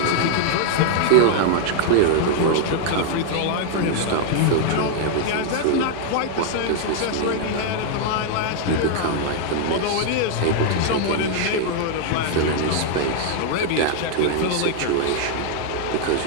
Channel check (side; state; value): both; different; correlation 0.00